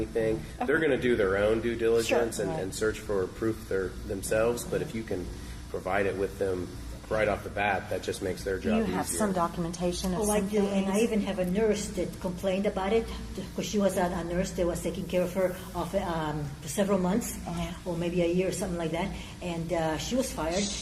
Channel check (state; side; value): identical; both; correlation 1.00